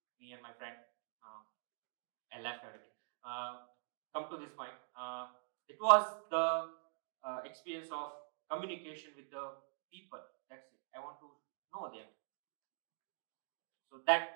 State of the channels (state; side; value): silent; left; digital silence